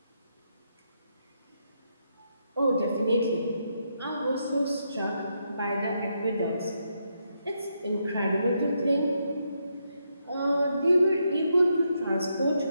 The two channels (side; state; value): both; inverted; correlation -0.80